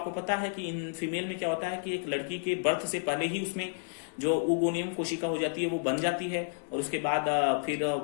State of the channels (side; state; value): right; silent; digital silence